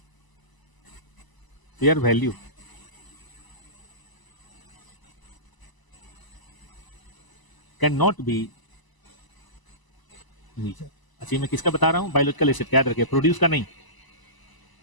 fair value cannot be measured। अच्छा, मैं किसका बता रहा हूं? बायोलॉजिकल एसेट, याद रखिए, प्रोड्यूस का नहीं,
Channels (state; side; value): late; right; 1.0 ms